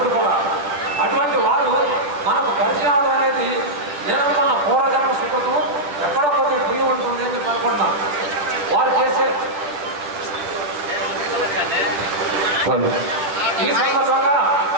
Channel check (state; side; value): late; left; 10 ms